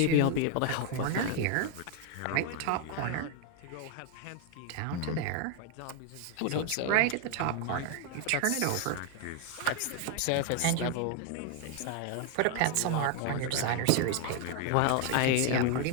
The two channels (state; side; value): different; both; correlation 0.01